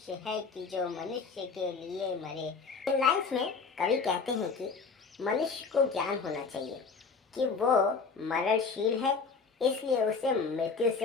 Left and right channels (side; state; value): right; quieter; 4.9 dB